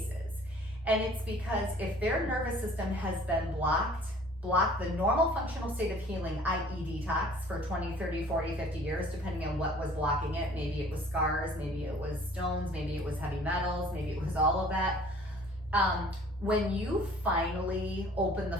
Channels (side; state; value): both; normal; correlation 0.51